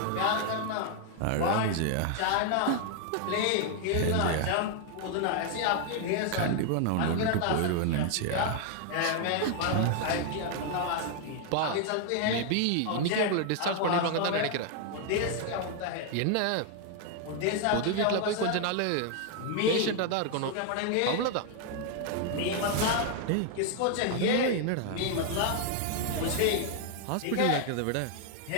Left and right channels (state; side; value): different; both; correlation 0.00